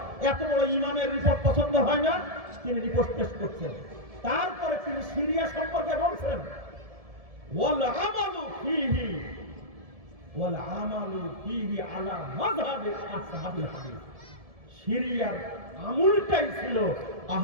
এত বড় ইমামের রিপোর্ট পছন্দ হয় না, তিনি রিপোর্ট পেশ করছেন। তারপরে তিনি সিরিয়া সম্পর্কে বলছেন ওয়াল আমালু ফিহি আলা মাযহাবি আসহাবিল হাদিস। সিরিয়ার আমলটাই ছিল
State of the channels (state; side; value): late; left; 1.7 ms